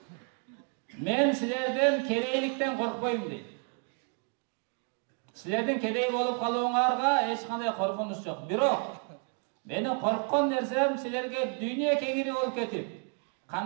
мен силерден кедейликтен коркпойм" дейт. Силердин кедей болуп калууңарга эч кандай коркунуч жок. Бирок менин корккон нерсем силерге дүйнө кеңири болуп кетип,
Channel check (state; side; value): quieter; left; 38.3 dB